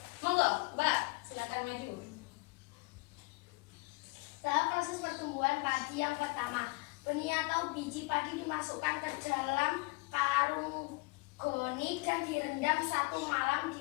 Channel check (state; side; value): quieter; right; 26.0 dB